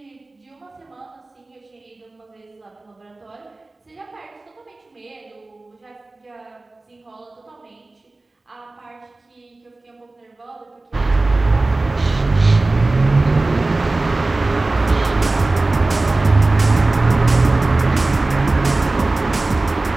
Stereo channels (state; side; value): quieter; left; 3.1 dB